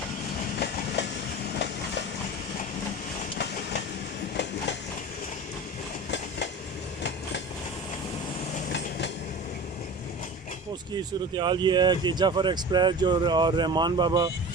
उसकी सूरत हाल ये है कि जाफ़र एक्सप्रेस जो और रहमान बाबा,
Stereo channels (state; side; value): normal; both; correlation 0.34